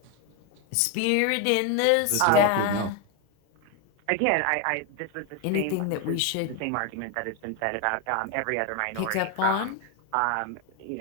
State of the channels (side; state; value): both; different; correlation 0.01